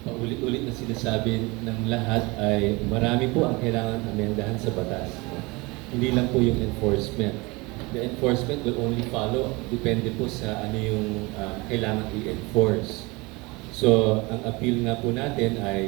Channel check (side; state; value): left; quieter; 24.8 dB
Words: paulit-ulit na sinasabi ng lahat ay marami po ang kailangan amendahan sa batas. Hindi lang po yung enforcement. The enforcement will only follow, depende po sa ano yung kailangan i-enforce. So, ang appeal nga po natin